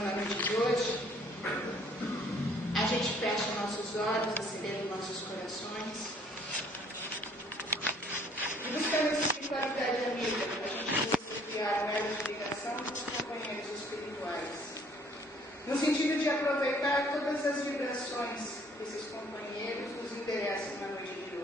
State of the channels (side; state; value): both; normal; correlation 0.60